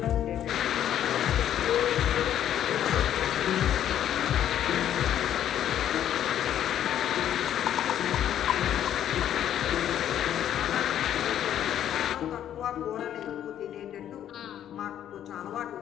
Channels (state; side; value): quieter; right; 10.7 dB